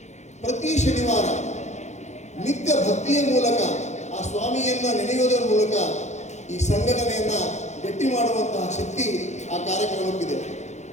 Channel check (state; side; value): late; right; 0.33 ms